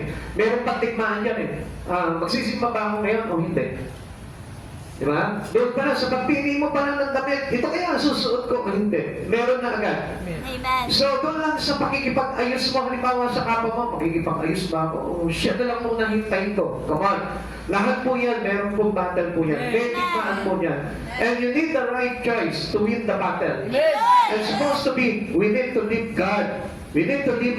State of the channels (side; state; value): both; identical; correlation 1.00